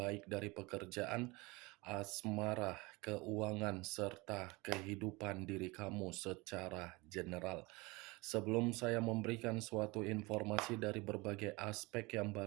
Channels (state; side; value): quieter; left; 24.4 dB